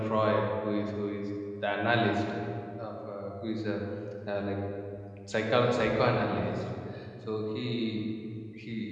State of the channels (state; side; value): identical; both; correlation 1.00